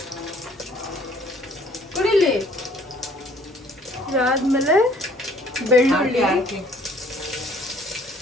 ಕುಡಿಲಿ. ಇದಾದ್ಮೇಲೆ ಬೆಳ್ಳುಳ್ಳಿ, ಹಾಕಿ.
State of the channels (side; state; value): both; normal; correlation 0.59